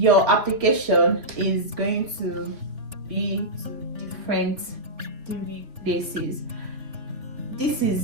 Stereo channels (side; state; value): left; late; 3.6 ms